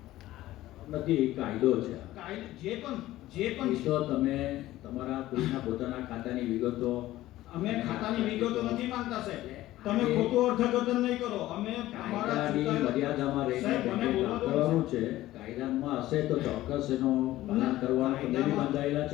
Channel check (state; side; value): quieter; right; 15.7 dB